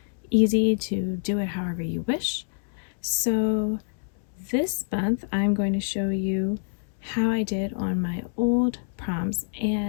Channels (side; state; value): right; silent; 61 dB below the other